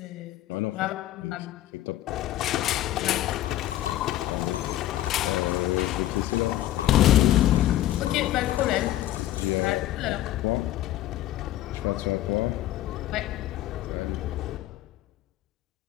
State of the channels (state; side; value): quieter; right; 14.0 dB